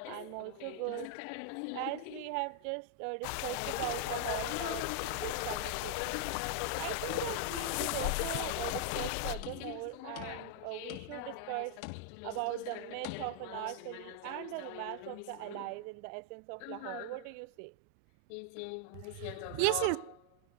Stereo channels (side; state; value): both; different; correlation 0.00